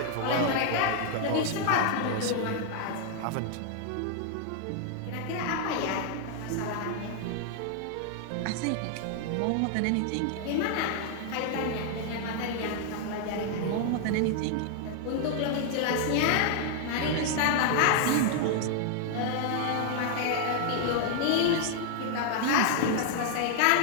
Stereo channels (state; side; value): different; both; correlation -0.01